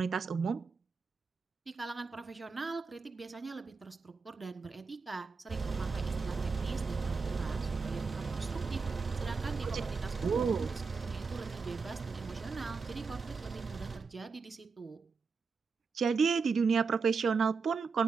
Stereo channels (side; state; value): left; quieter; 4.9 dB